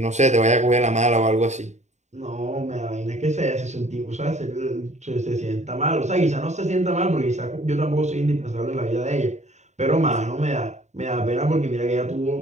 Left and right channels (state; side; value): late; left; 0.34 ms